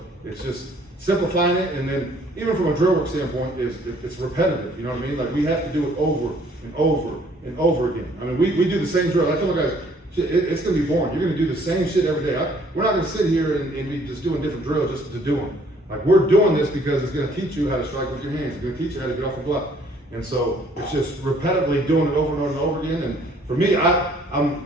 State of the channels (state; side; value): normal; both; correlation 0.60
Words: it's just simplifying it, and then even from a drill work standpoint, it's repetitive. You know what I mean? Like we have to do it over and over and over again. I mean, we do the same drill. I tell my guys, it's going to be boring. You're going to do the same shit every day. We're not going to sit here and be just doing different drills just to do them. Like we're doing this because it's going to teach you how to strike with your hands. It's going to teach you how to get off the block. And so it's just repetitively doing it over and over and over again. And for me, I'm